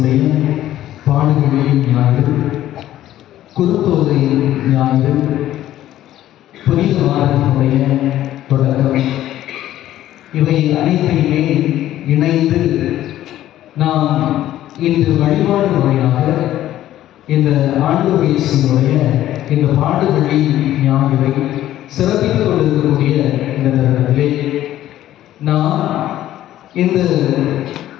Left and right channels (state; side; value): quieter; right; 13.2 dB